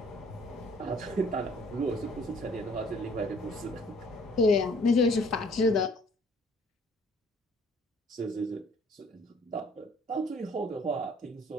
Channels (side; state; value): both; normal; correlation 0.57